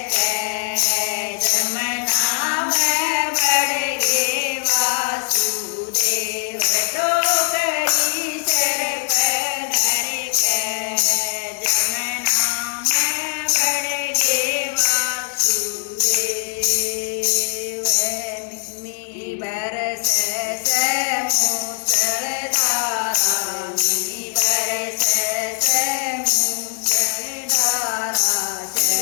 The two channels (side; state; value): right; silent; digital silence